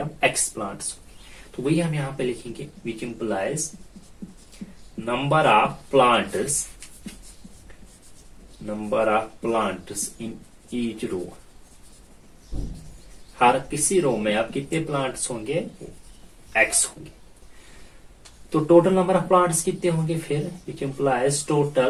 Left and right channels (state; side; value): identical; both; correlation 1.00